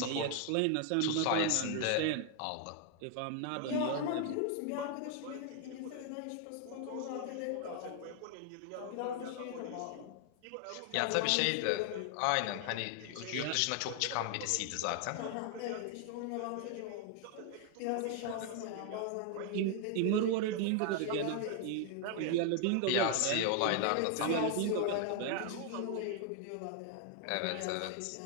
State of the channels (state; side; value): different; both; correlation 0.00